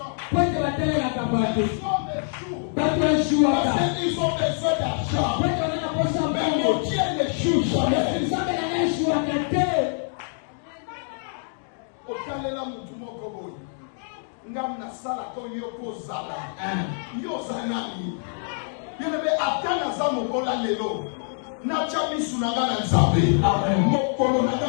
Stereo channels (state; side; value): silent; right; digital silence